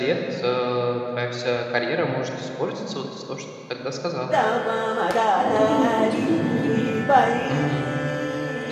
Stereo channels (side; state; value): both; identical; correlation 1.00